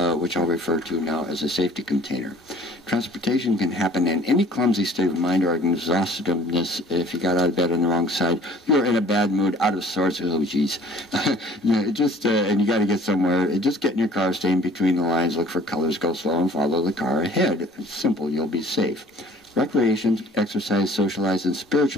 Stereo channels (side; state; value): both; normal; correlation 0.51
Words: which I'll refer to now as a safety container. Transportation can happen in any clumsy state of mind or exhaustiveness. If you got out of bed on the wrong side, you're in a bad mood, out of sorts. Oh, geez. And you got to get somewhere. Just get in your car, stay in between the lines, look for colors, go slow, and follow the car ahead. It's simple. You'll be safe. Recreation, exercise, socialize, and